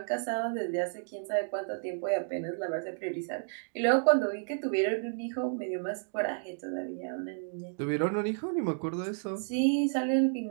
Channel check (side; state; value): left; silent; digital silence